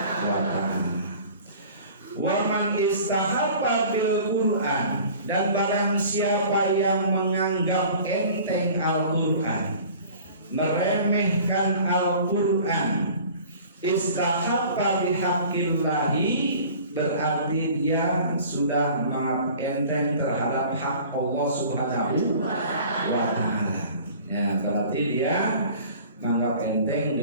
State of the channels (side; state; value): both; inverted; correlation -0.46